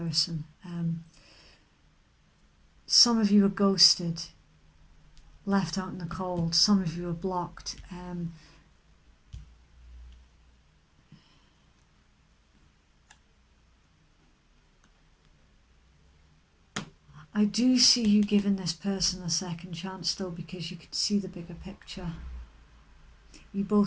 Some of you are ghosted, left out in the cold. Some of you are blocked. I do see you giving this person a second chance though, because you can see the bigger picture. You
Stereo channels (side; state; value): both; identical; correlation 1.00